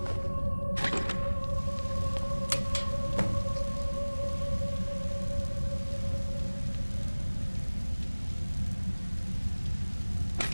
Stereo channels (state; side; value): inverted; both; correlation -1.00